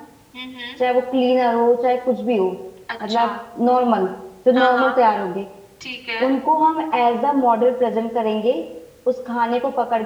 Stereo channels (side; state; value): both; identical; correlation 1.00